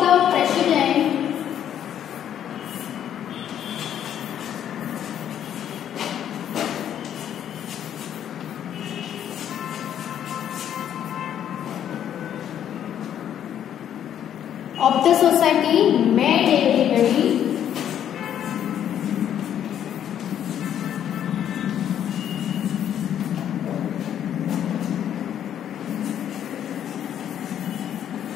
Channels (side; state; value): right; quieter; 10.0 dB